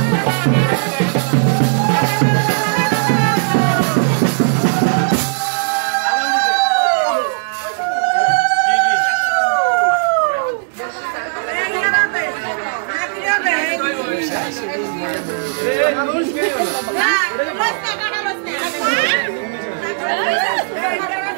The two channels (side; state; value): left; silent; digital silence